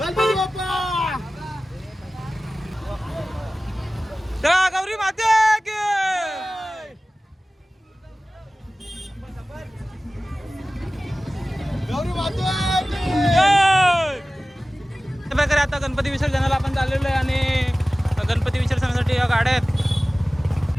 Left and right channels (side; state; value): both; normal; correlation 0.97